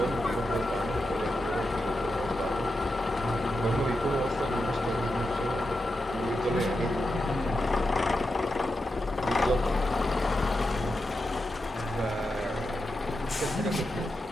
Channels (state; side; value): normal; both; correlation 0.88